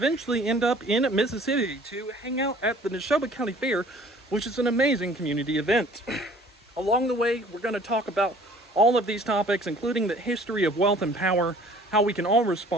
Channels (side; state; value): both; normal; correlation 0.52